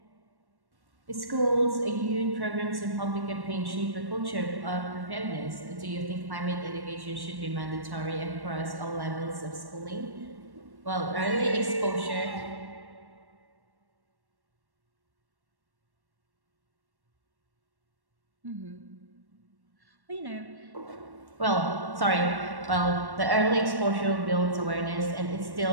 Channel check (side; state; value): left; late; 1.1 ms